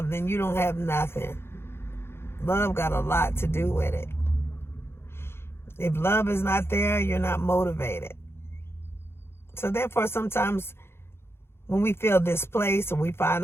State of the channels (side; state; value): right; late; 0.12 ms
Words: then you don't have nothing. Love got a lot to do with it. If love is not there, you're not motivated. So therefore, sometimes when we feel displaced or we find